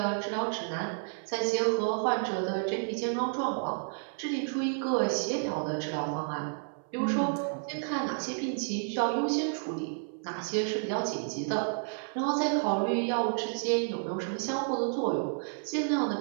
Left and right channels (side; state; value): left; silent; 57 dB below the other